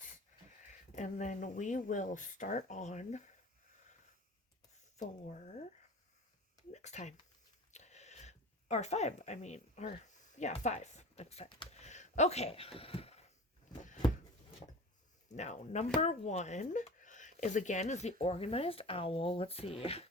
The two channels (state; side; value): normal; both; correlation 0.36